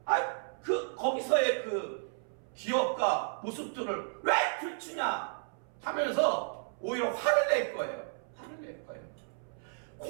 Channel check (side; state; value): left; silent; 56 dB below the other